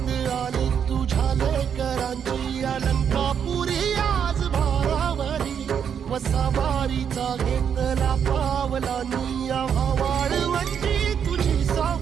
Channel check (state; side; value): quieter; left; 7.8 dB